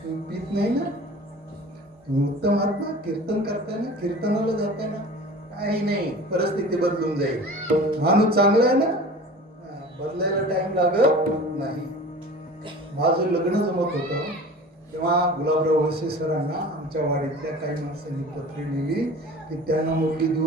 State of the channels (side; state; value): both; normal; correlation 0.40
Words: तुम्ही पीत नाही ना, तुम्ही उत्तम आहात ना, कीर्तन करताना, कीर्तनाला जाताना काही नाही, परिस्थिती बदलून जाईल. माणूस चांगला आहे ना, बदलायला टाइम लागत नाही. माझं लग्न जमत होतं तेव्हा गुलाबराव वळसे सरांना आमच्या वाडीतल्या काही माणसांनी पत्रे लिहिली की त्यांना मुलगी